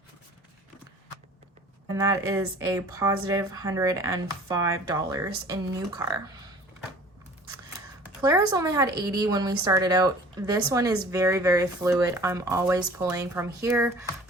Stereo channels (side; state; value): both; normal; correlation 0.47